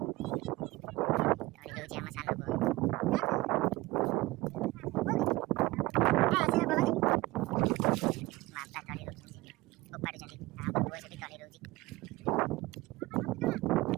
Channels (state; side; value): quieter; left; 20.4 dB